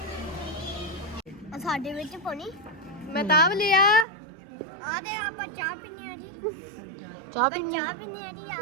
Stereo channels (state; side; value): drops out; left; at 4.0 s